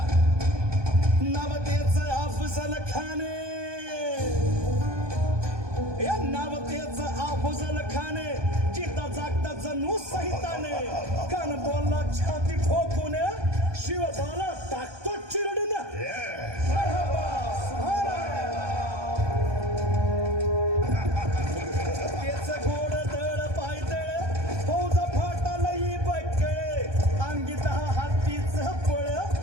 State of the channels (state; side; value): late; left; 1.2 ms